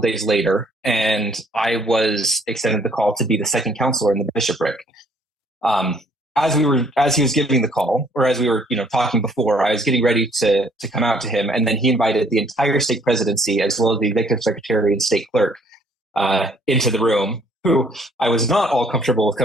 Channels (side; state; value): both; normal; correlation 0.63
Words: later, and I was extended the call to be the second counselor in the bishopric. As he was giving the call, or as we were, talking before, I was getting ready to come out to him, and then he invited the entire stake presidency as well as the executive secretary and stake clerk into the room, who I was not all comfortable with